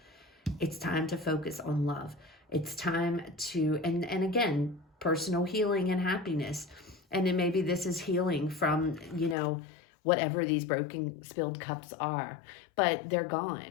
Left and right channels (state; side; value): drops out; right; at 9.3 s